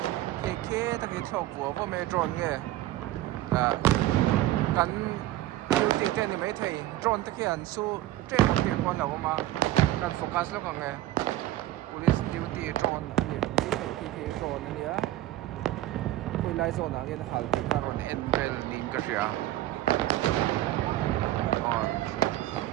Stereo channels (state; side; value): quieter; left; 15.0 dB